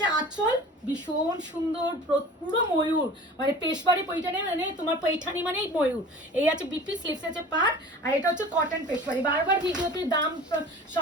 আঁচল, ভীষণ সুন্দর, পুরো ময়ূর, মানে পেশবাড়ি পৈঠানি, মানে তোমার পৈঠানি মানেই ময়ূর। এই আছে বিপি, স্লিভস আছে পার, আর এটা হচ্ছে কটন পেশবাড়ি। বারবার ভিডিওতে দাম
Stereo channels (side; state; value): both; normal; correlation 0.41